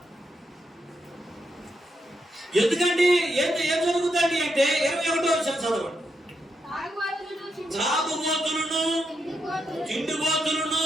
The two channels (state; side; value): normal; both; correlation 0.82